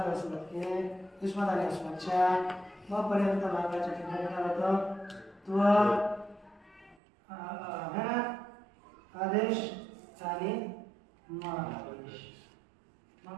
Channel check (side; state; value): left; drops out; at 7.0 s